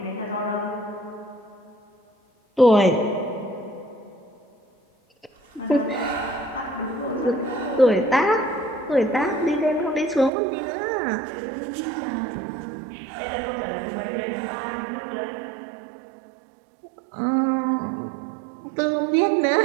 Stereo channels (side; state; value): left; drops out; at 10.3 s